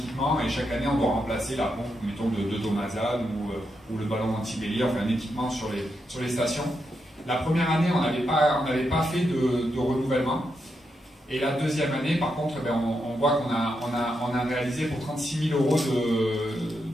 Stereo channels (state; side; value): normal; both; correlation 0.83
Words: et chaque année, on doit remplacer la pompe, mettons, de Domazan ou le ballon anti-bélier, enfin un équipement sur les stations. La première année, on n'avait pas fait de renouvellement. Et la deuxième année, par contre, on voit qu'on a réalisé pour 36 000 €